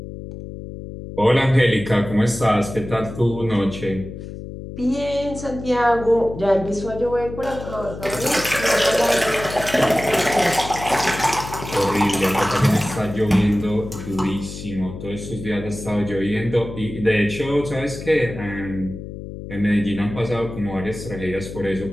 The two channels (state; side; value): noise; left; hum, 10 dB below the sound